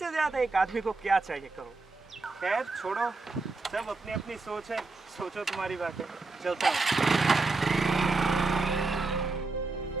ज़्यादा एक आदमी को क्या चाहिए कहो? खैर छोड़ो, सब अपनी अपनी सोच है, सोचो तुम्हारी बात है, चलता हूँ।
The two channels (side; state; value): left; quieter; 3.7 dB